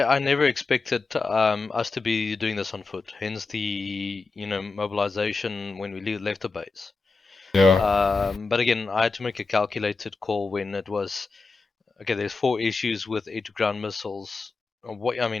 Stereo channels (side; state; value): right; quieter; 4.1 dB